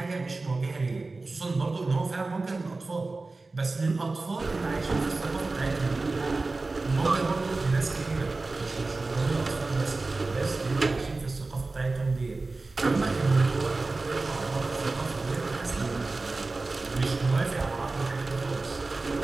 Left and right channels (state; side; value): quieter; left; 3.5 dB